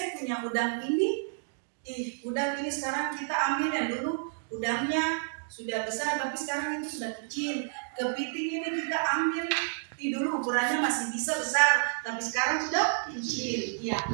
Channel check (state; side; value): silent; left; digital silence